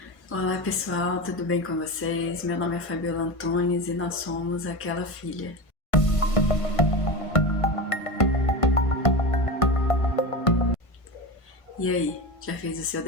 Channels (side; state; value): right; late; 1.5 ms